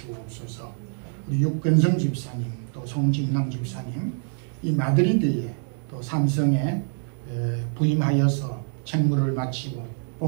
우리 육근성 집사님 또 송진남 집사님 이 마드리드에 또 삼성에 부임하여서 책무를 마치고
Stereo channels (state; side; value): silent; left; 61 dB below the other